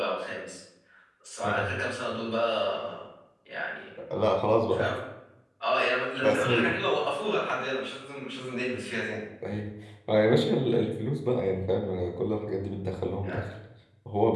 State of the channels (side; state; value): both; identical; correlation 1.00